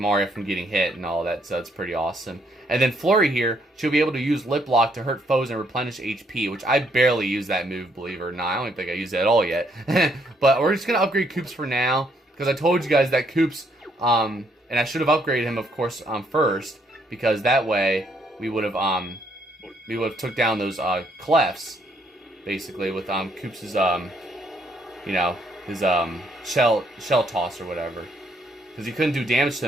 from getting hit and all that. So that's pretty awesome. And then Flurry here, she'll be able to use Lip Lock to hurt foes and replenish HP, which I barely use that move, believe it or not. I don't think I use it at all yet. But we're just gonna upgrade Koops for now, because I told you guys that Koops, and I should have upgraded him, of course, first, because that way we would have took down those clefts, basically, with Koops' you know, his shell toss or whatever, because he couldn't do damage to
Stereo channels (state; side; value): normal; both; correlation 0.70